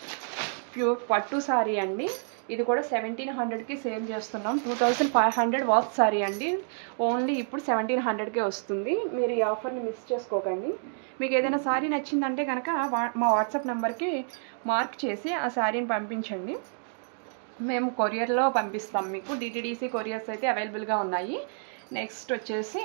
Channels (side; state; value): left; silent; digital silence